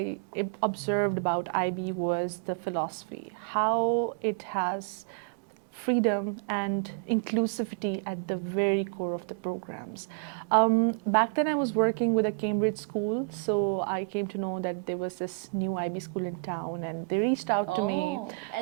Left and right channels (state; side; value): quieter; left; 33.6 dB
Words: observed about IB was the philosophy, how it has freedom and inclusivity at the very core of the programs. Back then I was working with a Cambridge school, so I came to know that there was this new IB school in town, and they reached out to me. Oh,